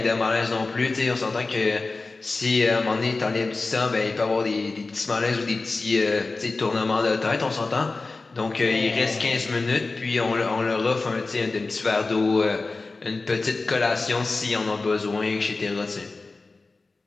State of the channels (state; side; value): quieter; right; 3.7 dB